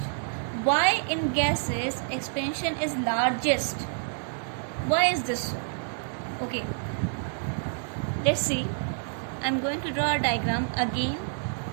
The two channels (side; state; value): left; silent; 59 dB below the other